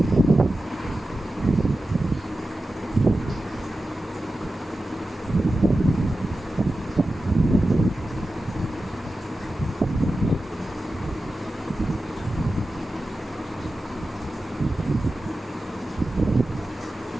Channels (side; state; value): both; normal; correlation 0.93